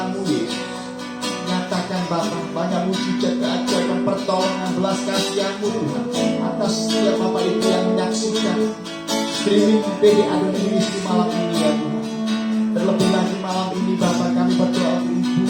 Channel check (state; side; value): identical; both; correlation 1.00